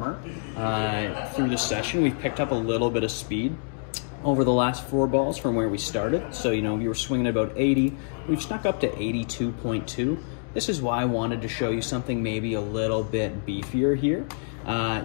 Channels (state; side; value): silent; right; 61 dB below the other